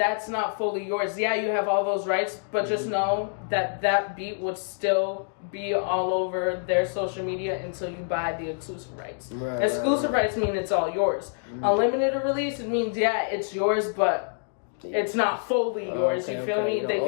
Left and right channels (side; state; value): right; silent; digital silence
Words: not fully yours. Yeah, you have all those rights, but just know that beat would still be all over their social media until you buy the exclusive rights. Exclusive rights mean it's all yours. Unlimited release, it means, it's yours, but it's not fully yours. You feel me? They